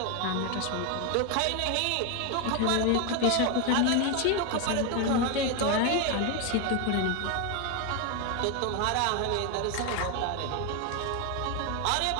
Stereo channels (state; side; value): different; both; correlation 0.01